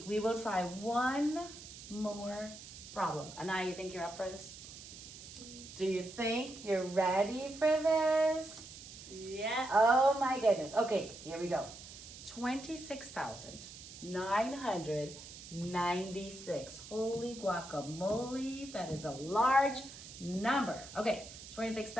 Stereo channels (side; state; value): right; noise; hiss, 14 dB below the sound